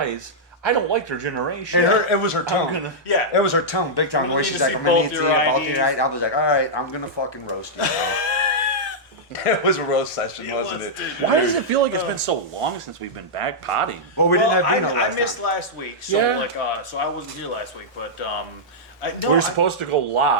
I don't like their generation. And it was her tone. gonna- Yeah. It was her tone, big time. We Where need she's to like, see I'm gonna both need to your see both IDs. your IDs. I was like, all right, I'm gonna fucking roast you. Now. It was a roast session, wasn't it? Why does it feel like it's been so long since we've been back potting? Well, we Well, didn't have Dino I last missed time. last week, so Yeah. so I wasn't here last week, but We were supposed to go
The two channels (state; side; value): normal; both; correlation -0.09